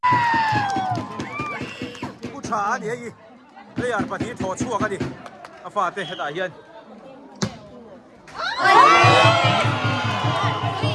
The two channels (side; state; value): both; identical; correlation 1.00